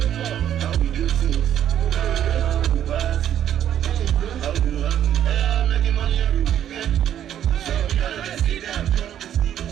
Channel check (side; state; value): left; quieter; 10.5 dB